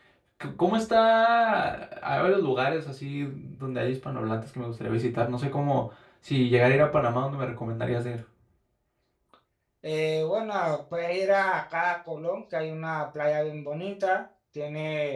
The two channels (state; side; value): identical; both; correlation 1.00